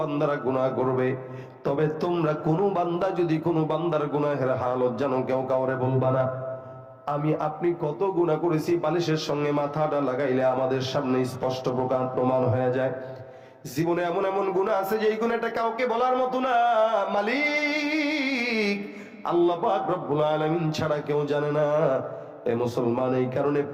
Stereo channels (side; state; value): both; identical; correlation 1.00